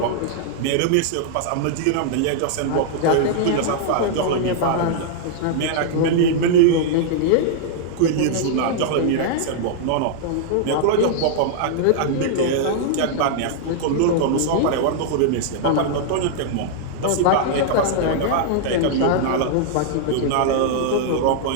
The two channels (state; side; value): different; both; correlation -0.01